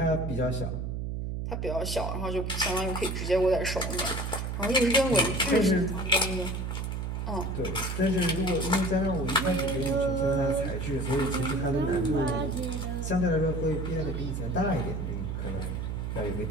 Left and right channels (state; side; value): noise; right; hum, 3 dB below the sound